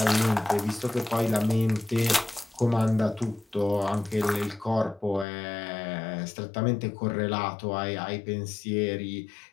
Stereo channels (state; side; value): drops out; right; at 5.2 s